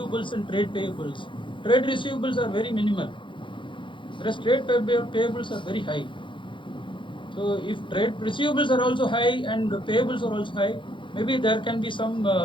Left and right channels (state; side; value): late; right; 0.24 ms